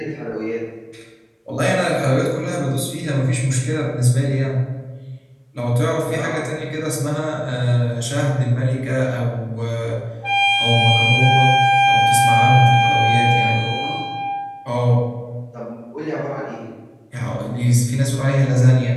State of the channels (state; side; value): identical; both; correlation 1.00